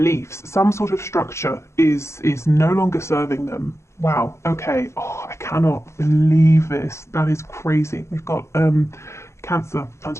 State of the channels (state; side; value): late; right; 0.13 ms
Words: Some sort of structure is no longer serving them. Wow, okay. Oh, I cannot believe this. That is crazy. We've got Cancer